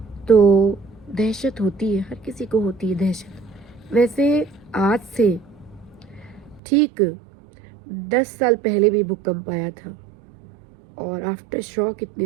तो दहशत होती है, हर किसी को होती है दहशत। वैसे आज से ठीक 10 साल पहले भी भूकंप आया था और आफ्टर शॉक इतने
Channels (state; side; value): drops out; left; at 6.6 s